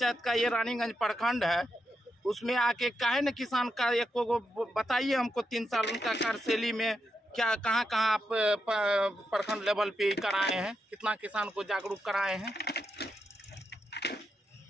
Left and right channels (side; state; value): both; normal; correlation 0.85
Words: का ये रानीगंज प्रखंड है, उसमें आके काहे न किसान का एक को बताइए हमको 3 साल उनका कार्यशैली में क्या कहाँ आप प्रखंड लेवल पे कराए हैं, कितना किसान को जागरूक कराए हैं।